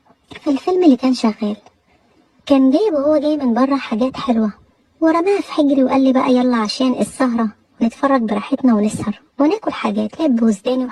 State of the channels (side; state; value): both; identical; correlation 1.00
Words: في الفيلم اللي كان شغال. كان جايب وهو جاي من برا حاجات حلوة ورماها في حجري وقال لي بقى يلا عشان السهرة نتفرج براحتنا ونسهر وناكل حاجات لب وزداني